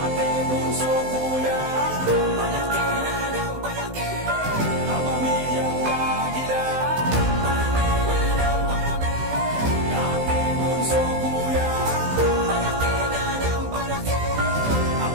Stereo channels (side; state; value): left; late; 16 ms